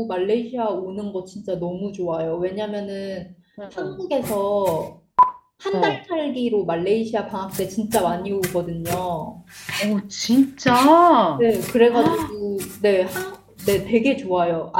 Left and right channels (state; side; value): identical; both; correlation 1.00